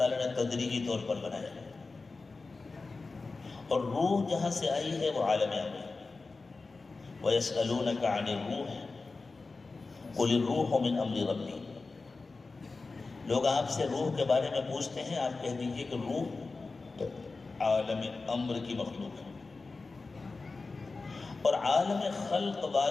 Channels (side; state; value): right; quieter; 3.9 dB